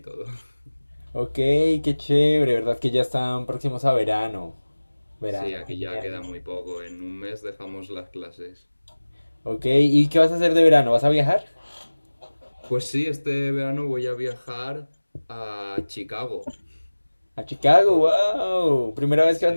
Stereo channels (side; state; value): both; inverted; correlation -1.00